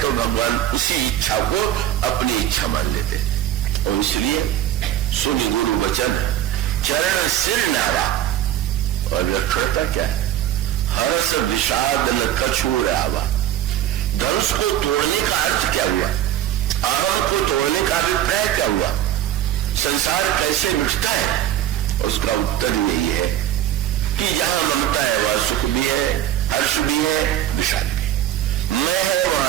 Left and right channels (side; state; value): left; quieter; 12.2 dB